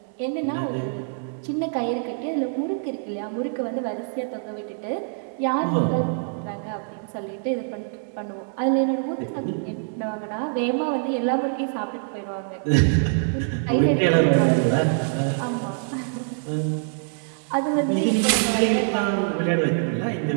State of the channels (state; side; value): silent; left; digital silence